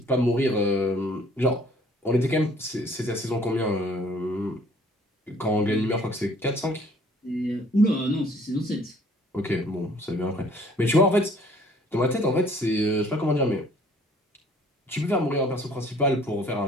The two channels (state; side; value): normal; both; correlation 0.56